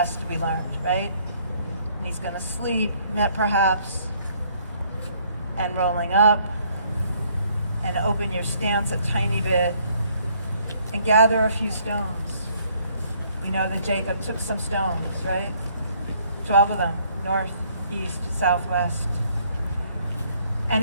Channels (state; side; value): inverted; both; correlation -0.65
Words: we learned, right? And he's going to sleep, perhaps. And rolling up. And open your stance a tiny bit. And gather a few stones. We know that Jacob took some stones, right? 12 of them, north, east, southwest. And